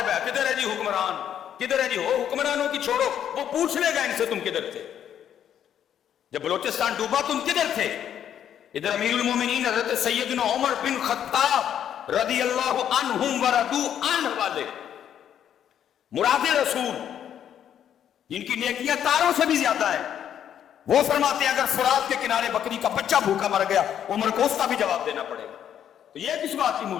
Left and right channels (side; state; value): right; quieter; 9.7 dB